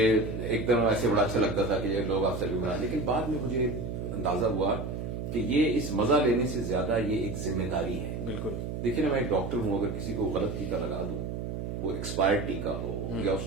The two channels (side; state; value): right; noise; hum, 5 dB below the sound